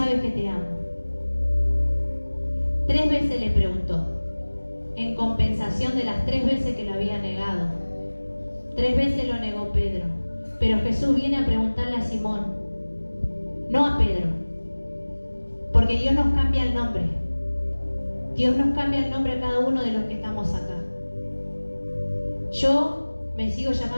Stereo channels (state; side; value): inverted; both; correlation -1.00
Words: que te amo. 3 veces le preguntó, en compensación de las 3 veces que lo había negado. 3 veces lo negó Pedro, pero Jesús viene a preguntarle a Simón, no a Pedro, porque Dios nos cambia el nombre. Dios nos cambia el nombre a cada uno de los que estamos acá. Yo me sigo